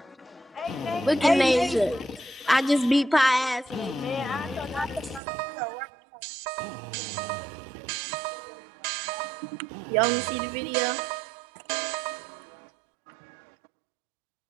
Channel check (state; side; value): drops out; left; at 5.2 s